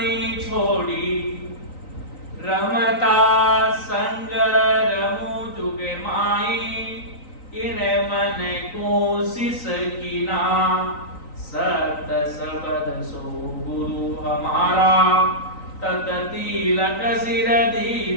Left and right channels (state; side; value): late; right; 3.9 ms